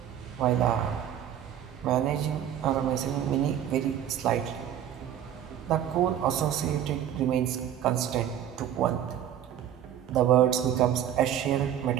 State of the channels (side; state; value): left; quieter; 10.4 dB